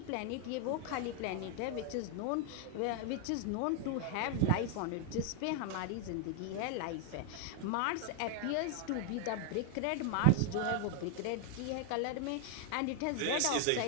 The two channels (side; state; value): both; different; correlation 0.00